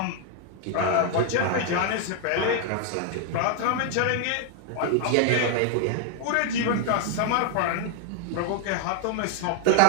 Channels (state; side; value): different; both; correlation 0.00